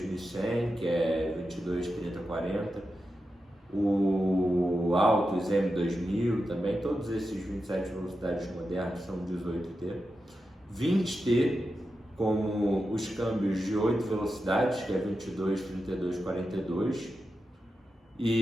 que é 22, 30, 40, o Altus M2000 também, todos esses 27 velocidades modernos são 18T. 20T, como os câmbios de 8 velocidades, que é 22, 32, 42.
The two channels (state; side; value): normal; both; correlation 0.89